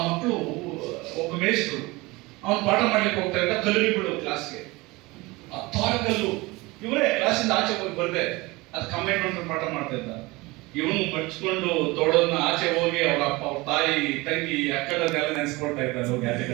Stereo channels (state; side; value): quieter; left; 22.7 dB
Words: ಮಕ್ಕಳು, ಒಬ್ಬ ಮೇಷ್ಟ್ರು ಅವನು ಪಾಠ ಮಾಡ್ಲಿಕ್ಕೆ ಹೋಗ್ತಾ ಇದ್ದ, ಕಲ್ಲಿಗೆ ಬಿಡು ಕ್ಲಾಸ್ಗೆ, 10 ಕಲ್ಲು ಇವರೇ ಕ್ಲಾಸಿಂದ ಆಚೆ ಹೋಗಿ ಬರ್ದೆ, ಅದು ಕಂಬೈನ್ ಮಾಡ್ಕೊಂಡು ಪಾಠ ಮಾಡ್ತಾ ಇದ್ದ. ಇವನು ಮಡ್ಚ್ಕೊಂಡು ತೋಡನ್ನ ಆಚೆ ಹೋಗಿ ಅವ್ರ ಅಪ್ಪ, ಅವ್ರ ತಾಯಿ, ತಂಗಿ, ಅಕ್ಕದನ್ನೆಲ್ಲ ನೆನೆಸ್ಕೊಳ್ತಾ ಇದ್ದಾರೆ ಹೋಗಿ